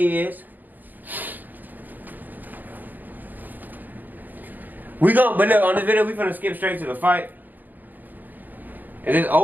But look, on this video, we finna skip straight to the fight. If it's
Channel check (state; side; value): late; left; 0.085 ms